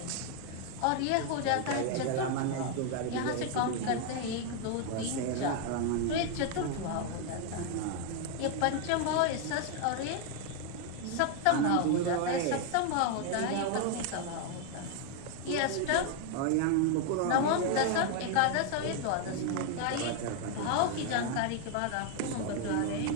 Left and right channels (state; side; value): different; both; correlation 0.00